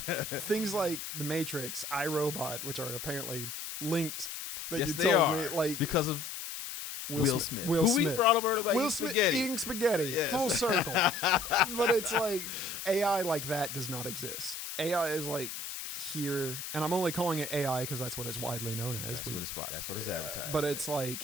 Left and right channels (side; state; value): left; noise; hiss, 7 dB below the sound